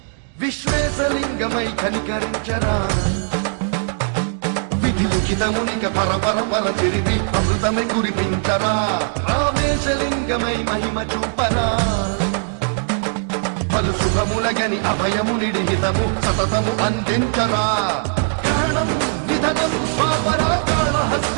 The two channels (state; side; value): silent; left; digital silence